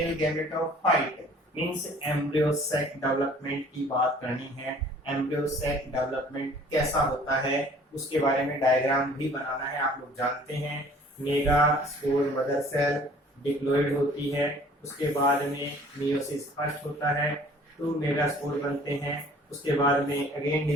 gametophyte means embryo sac development की बात करनी है। एम्ब्रियो सैक डेवलपमेंट कैसा होता है उसके बारे में डायग्राम भी बनाना है। आप लोग जानते हैं megaspore mother cell diploid होती है, उसके बाद में मियोसिस फर्स्ट होता है, 2 मेगा स्पोर बनते हैं, उसके बाद में अगेन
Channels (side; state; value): both; normal; correlation 0.53